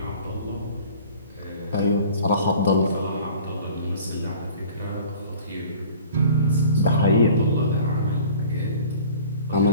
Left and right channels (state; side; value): inverted; both; correlation -0.47